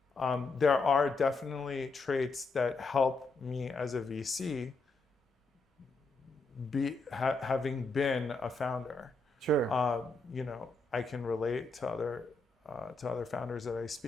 there are definitely traits that help me as a VC having been a founder. Sure. I can relate to other founders that I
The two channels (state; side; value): quieter; right; 3.5 dB